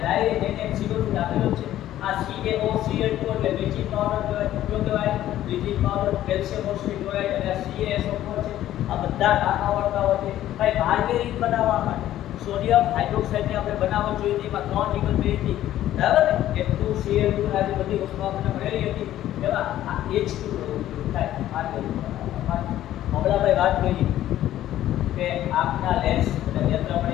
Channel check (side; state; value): right; quieter; 13.1 dB